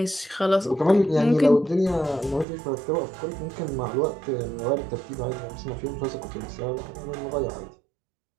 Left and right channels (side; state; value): left; drops out; at 2.5 s